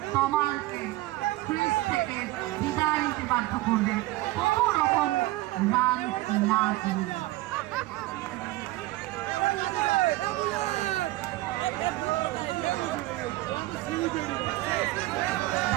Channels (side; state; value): left; quieter; 18.7 dB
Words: কমালকে ক্রিজ থেকে বিদায় নিতে বাধ্য করবে কোনো রকম রান না দিয়ে।